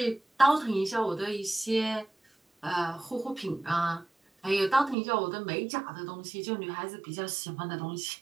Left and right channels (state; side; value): drops out; left; at 5.0 s